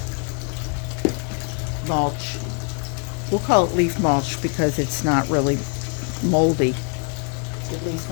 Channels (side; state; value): right; quieter; 38.9 dB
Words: mulch. we'll call it leaf mulch because it's not really moldy. At least